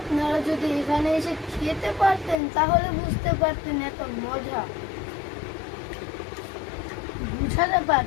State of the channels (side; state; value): right; drops out; at 2.4 s